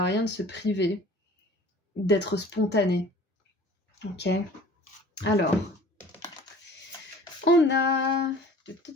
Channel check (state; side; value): normal; both; correlation 0.47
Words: rien de se priver d'être spontané. Ok. Alors, on a